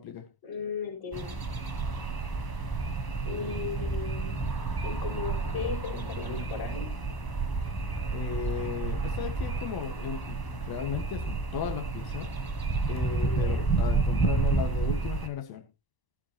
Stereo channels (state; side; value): late; right; 1.0 ms